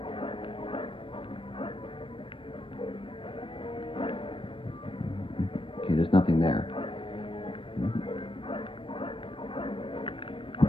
Okay, there's nothing there.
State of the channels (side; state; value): right; late; 0.25 ms